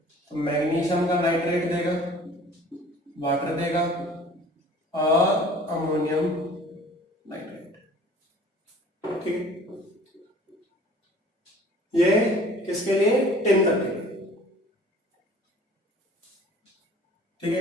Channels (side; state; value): both; normal; correlation 0.49